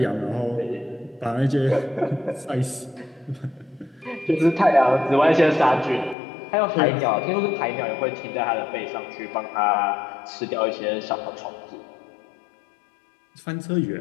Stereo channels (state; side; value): drops out; right; at 6.2 s